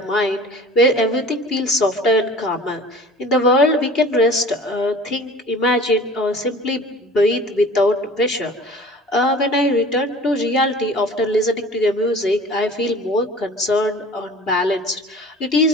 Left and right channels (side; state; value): both; normal; correlation 0.44